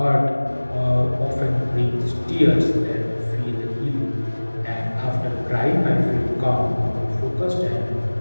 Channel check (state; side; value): inverted; both; correlation -1.00